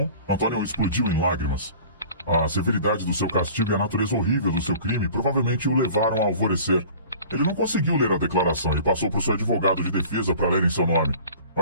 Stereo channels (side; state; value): both; inverted; correlation -0.44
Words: Antônio explodiu em lágrimas. A severidade do seu castigo e a natureza horrível do seu crime provavelmente o levaram a alvorecer. Ele não conseguiu ler a declaração e passou por seu advogado de defesa para ler em seu nome. O